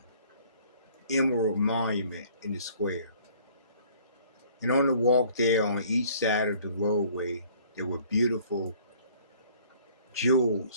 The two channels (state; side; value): inverted; both; correlation -0.56